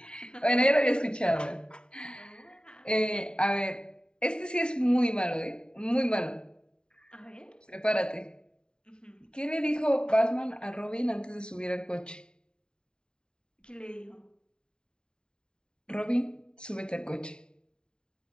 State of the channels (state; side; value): late; right; 0.048 ms